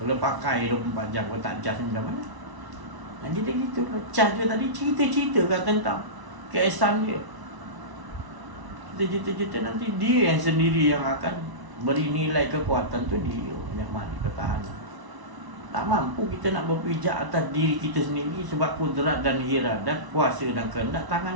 pakai 24 jam kalau tak cas macam mana? Jadi gitu lah. Cas dia tadi cerita-cerita kan tentang keesan dia. Cerita-cerita nanti dia yang sendiri yang akan beri nilai kekuatan tu dia yang mana ketahanan. Tak mampu kita nak berpijak atas diri kita sendiri sebab kudrat dan iradat, kuasa dan kehendak tangan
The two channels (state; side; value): late; left; 1.0 ms